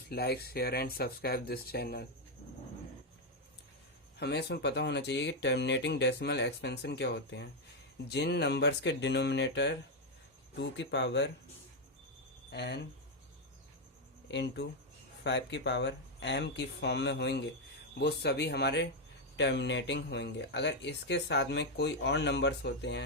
like share and subscribe this channel. हमें इसमें पता होना चाहिए कि टर्मिनेटिंग डेसिमल एक्सपेंशन क्या होते हैं। जिन नंबर्स के डिनोमिनेटर 2 की पावर n इंटू 5 की पावर m की फॉर्म में होंगे वो सभी हमारे टर्मिनेटिंग होंगे। अगर इसके साथ में कोई और नंबर्स होते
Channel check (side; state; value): both; normal; correlation 0.03